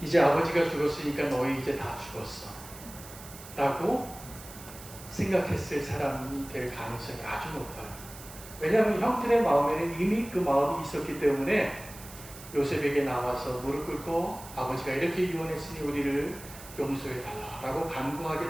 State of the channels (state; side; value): noise; right; hiss, 16 dB below the sound